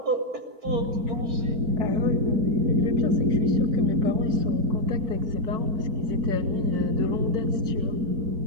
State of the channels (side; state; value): left; late; 4.5 ms